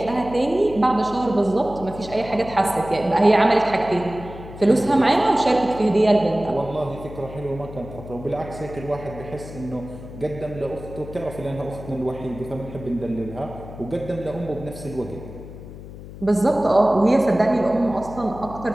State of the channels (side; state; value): left; noise; hum, 14 dB below the sound